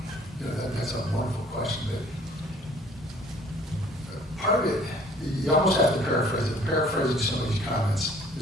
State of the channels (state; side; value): normal; both; correlation 0.55